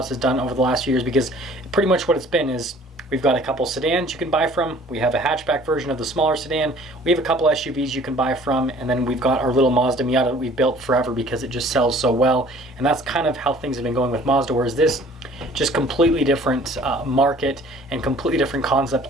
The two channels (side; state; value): both; normal; correlation 0.52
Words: done over the last few years, because pretty much what it's been is we've got a couple sedans you can buy from, we have a hatchback version of the smaller sedan, we have a couple SUVs you can buy from, and then we've got our little Mazda Miata that we've built forever because it just sells so well. And that's kind of how things have been going with Mazda, whereas this, just completely different market and completely different concept.